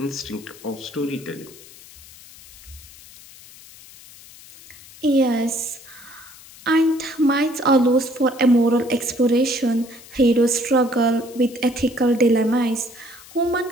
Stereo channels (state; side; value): noise; left; hiss, 20 dB below the sound